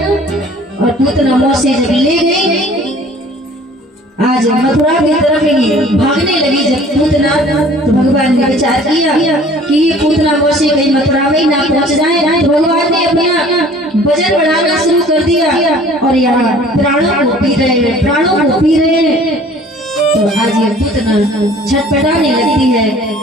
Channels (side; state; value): both; normal; correlation 0.51